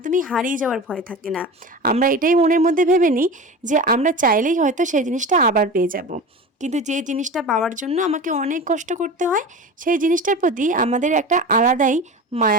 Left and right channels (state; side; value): normal; both; correlation 0.31